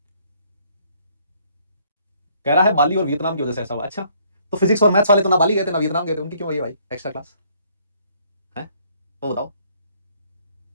कह रहा है बाली और वियतनाम की वजह से ऐसा हुआ। अच्छा, तो फिज़िक्स और मैथ्स वाले तो ना बाली गए थे, ना वियतनाम गए थे, उनकी क्यों आई है भाई एक्स्ट्रा क्लास? हैं? वो बताओ।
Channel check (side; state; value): both; inverted; correlation -0.64